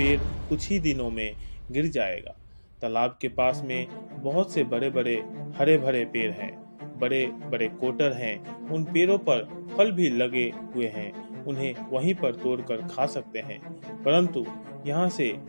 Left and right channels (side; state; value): both; inverted; correlation -1.00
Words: कुछ ही दिनों में गिर जाएगा। तालाब के पास में बहुत से बड़े बड़े हरे भरे पेड़ हैं, बड़े बड़े कोटर हैं, उन पेड़ों पर फल भी लगे हुए हैं, उन्हें वहीं पर तोड़कर खा सकते हैं, परंतु यहाँ से